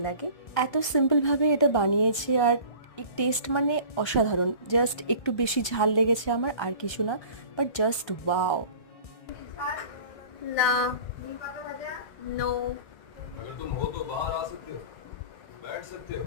লাগে। এত সিম্পল ভাবে এটা বানিয়েছে, আর টেস্ট মানে অসাধারণ। জাস্ট একটু বেশি ঝাল লেগেছে আমার, আর কিছু না, বাট জাস্ট ওয়াও। না, নো। अगर तुम हो तो बाहर आ सकते हो, बैठ सकते हो।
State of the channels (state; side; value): late; right; 1.3 ms